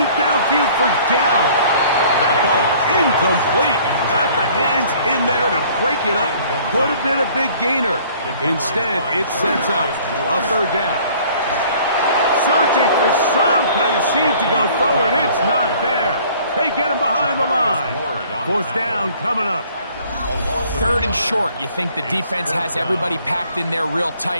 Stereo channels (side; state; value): both; inverted; correlation -0.54